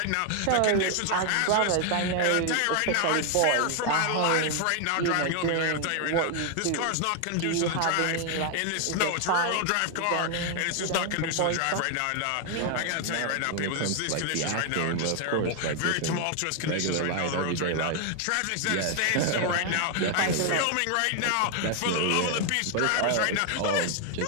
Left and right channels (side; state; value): both; different; correlation 0.00